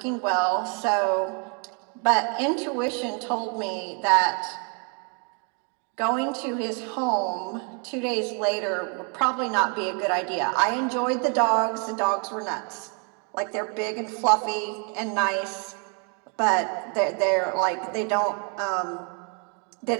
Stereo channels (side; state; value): left; quieter; 38.2 dB